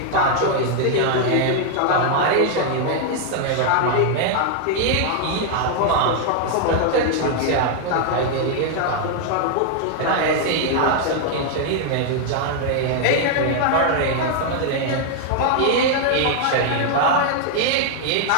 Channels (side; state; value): both; different; correlation 0.00